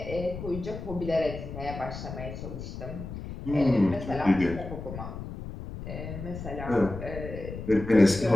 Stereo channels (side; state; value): left; noise; rumble, 9 dB below the sound